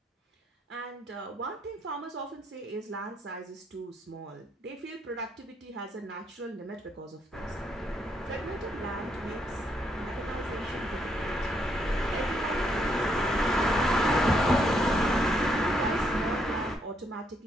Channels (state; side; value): normal; both; correlation 0.74